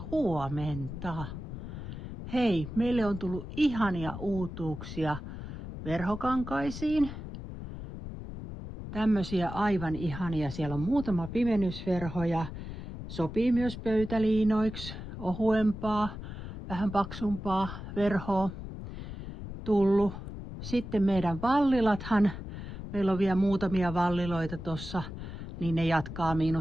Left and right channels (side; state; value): left; noise; rumble, 9 dB below the sound